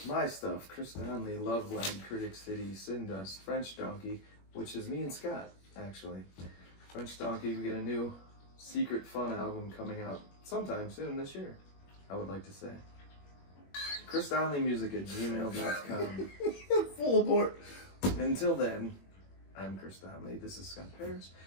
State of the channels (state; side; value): late; right; 21 ms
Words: my stuff. Chris Donley, Love Land, Critic City, Sin Dust, French Donkey, which is me and Scott, actually. French Donkey, we get a new secret fun album coming out sometime soon this year, I would like to say. ChrisDonleyMusic@gmail.com. Full abort. Until then, I'm Chris Donley. This is Scott Paris.